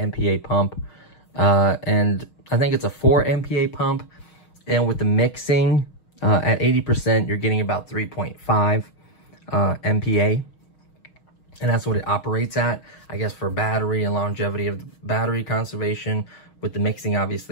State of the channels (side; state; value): right; late; 6.3 ms